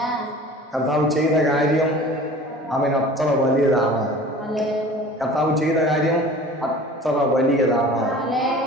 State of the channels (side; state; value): both; normal; correlation 0.43